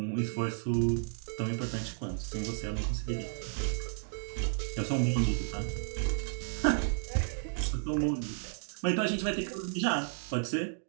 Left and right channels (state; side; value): silent; left; digital silence